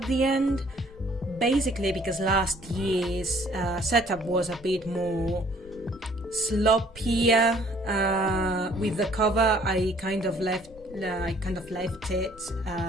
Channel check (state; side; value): normal; both; correlation 0.58